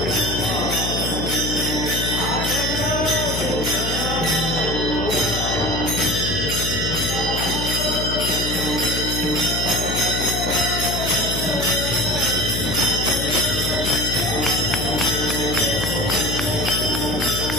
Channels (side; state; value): left; noise; hum, 3 dB below the sound